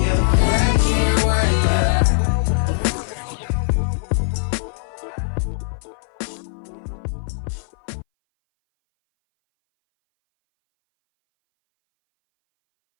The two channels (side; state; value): right; silent; 61 dB below the other